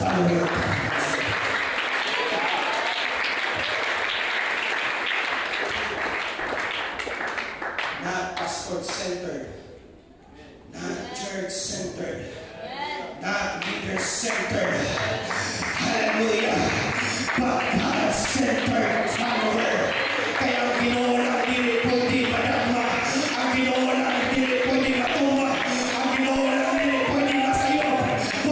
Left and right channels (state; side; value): identical; both; correlation 1.00